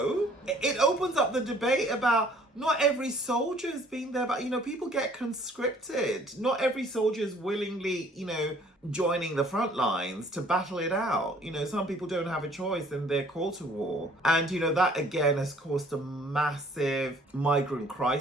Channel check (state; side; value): normal; both; correlation 0.57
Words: up the debate about not every soldier has been there, but people get conscripted. Not every soldier is willingly, joining the front lines to battle it out. Some people don't have a choice and they're called to war. And, that again has caused a massive migrant